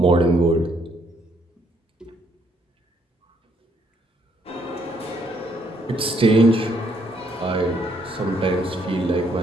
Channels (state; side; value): normal; both; correlation 0.70